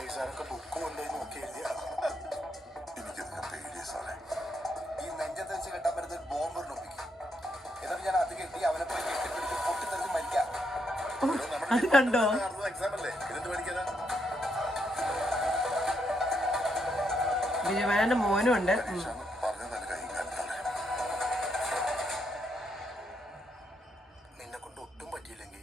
ഈ സാറൊക്കെ ബുക്ക് കൊണ്ടുപോയി നോക്കി എഴുതിയ എനിക്കിതിനെ പേടിയ സാറേ. ഈ നെഞ്ചത്ത് വെച്ച് കെട്ടാൻ പറ്റുന്ന ഒരു ബോംബ് ഒപ്പിക്കും. എന്നിട്ട് ഞാൻ അത് കെട്ടി അവനെ പോയി കെട്ടിപ്പിടിച്ച് പൊട്ടിത്തെറിച്ച് മരിക്കാം. അത് കണ്ടോ? എക്സാം അല്ലേ, ഇതെന്ത് പഠിക്കാനാ? ബിജു മേനന്റെ മോനും ഉണ്ട്. നിന്നെ കൊണ്ട് ഒട്ടും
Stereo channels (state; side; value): normal; both; correlation 0.78